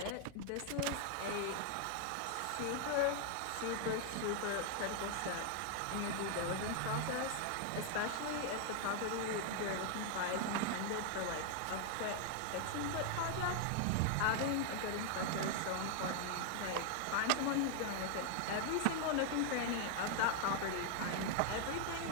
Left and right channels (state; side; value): different; both; correlation 0.00